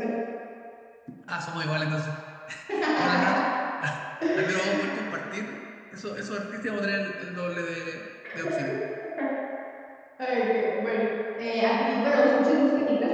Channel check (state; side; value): identical; both; correlation 1.00